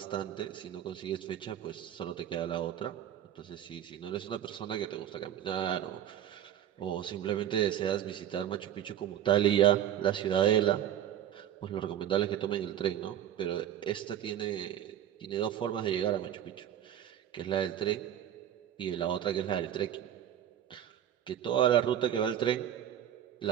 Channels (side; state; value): left; quieter; 10.8 dB